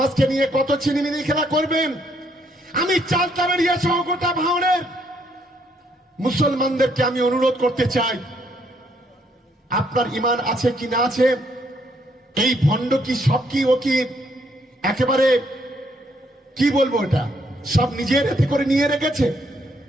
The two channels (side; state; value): both; normal; correlation 0.71